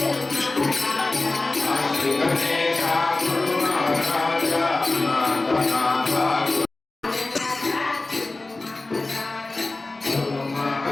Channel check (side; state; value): right; quieter; 3.1 dB